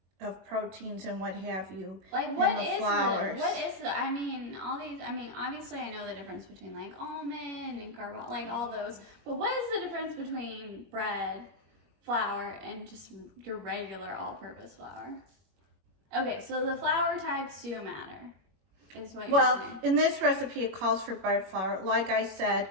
of proteins and what have you like in the flours. What is the, I mean, all these, I mean, obviously I know the difference between like almond and carbon, like all those, but what is the difference between bread, flour, and just your regular all-purpose flour? Okay, so the flour types do matter, is what you're saying. Well, in this recipe, it calls for bread flour. Like I said,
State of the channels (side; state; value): left; late; 21 ms